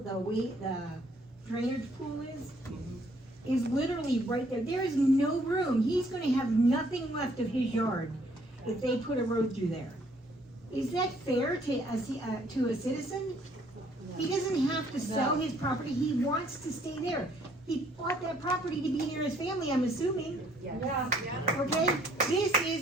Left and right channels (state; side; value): normal; both; correlation 0.64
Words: drainage pool is literally right there. There is no room. He's gonna have nothing left of his yard if they put a road through there. Is that fair to a citizen? He doesn't have to sell his property. He wants to stay there. He bought that property to be near his family, I'm assuming. Yeah. Okay? This